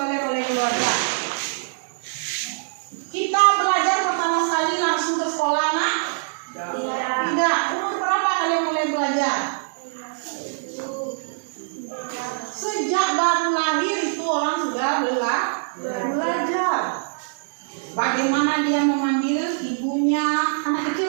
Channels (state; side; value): silent; left; digital silence